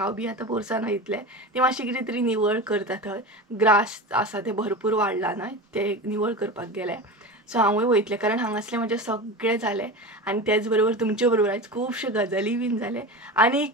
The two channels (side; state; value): both; normal; correlation 0.27